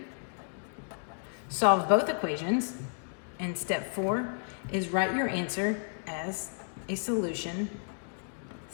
solve both equations. And step four is write your answer as a solution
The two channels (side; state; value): right; silent; digital silence